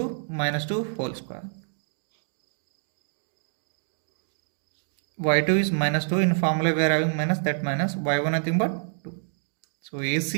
whole square. y2 is minus 2, in formula we are having minus, that minus y1 nothing but 2. So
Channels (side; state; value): left; silent; digital silence